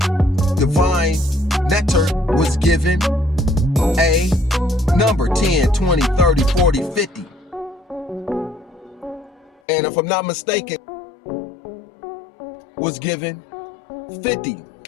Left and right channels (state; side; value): drops out; right; at 9.5 s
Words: divine nectar was given a number, 10, 20, 30, 40, 50. And if I'm not mistaken, was given 50.